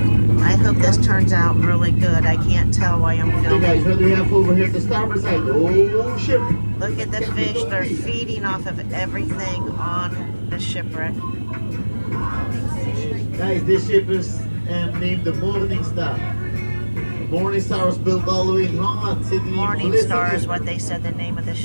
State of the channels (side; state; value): both; inverted; correlation -1.00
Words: I hope this turns out really good. I can't tell why I'm Hey filming. guys, what do we have over here at the starboard side? Oh, ship. Look at the fish. They're feeding off of everything on the shipwreck. Guys, this ship is named the Morning Star. The Morning Star was built all the way in Holland City. Morning Star is what they said the name of the